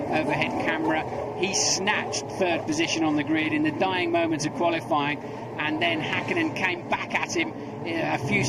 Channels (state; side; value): identical; both; correlation 1.00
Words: camera. He snatched 3rd position on the grid in the dying moments of qualifying, and then Häkkinen came back at him a few